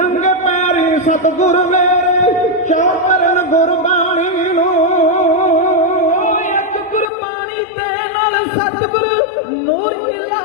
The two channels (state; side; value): drops out; right; at 7.1 s